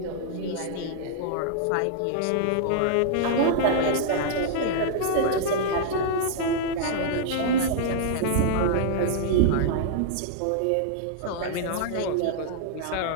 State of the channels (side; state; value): both; different; correlation -0.01